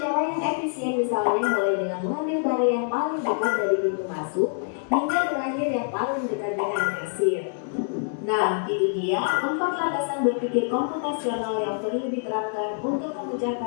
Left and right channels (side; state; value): right; silent; digital silence